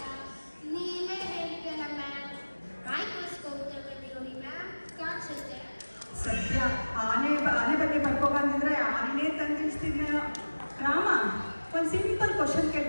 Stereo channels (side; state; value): both; inverted; correlation -1.00